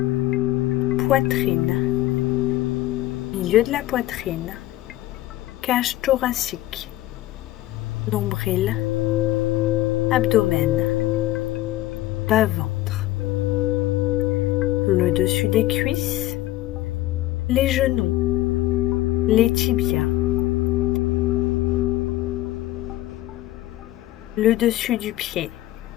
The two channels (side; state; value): right; quieter; 15.8 dB